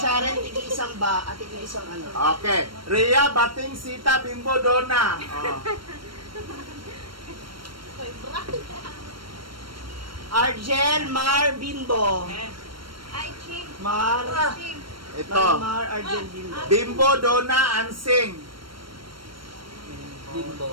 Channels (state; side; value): late; left; 0.73 ms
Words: tig-isang ba? At tig-isang ano? Okay. Rhea, Bating, Sita, Bimbo, Donna. Oh. Argel, Mar, Bimbo. Ay, Ching. Mar. Ching. Ito. Mar, Argel, Bimbo. Bimbo, Donna, Ansing.